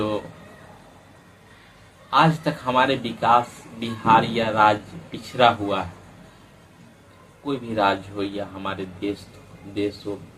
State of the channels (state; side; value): identical; both; correlation 1.00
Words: आज तक हमारे विकास, बिहार या राज्य पिछड़ा हुआ है, कोई भी राज्य हो या हमारे देश हो।